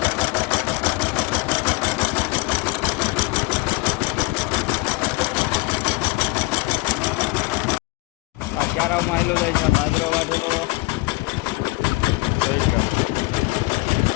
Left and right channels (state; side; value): quieter; right; 23.1 dB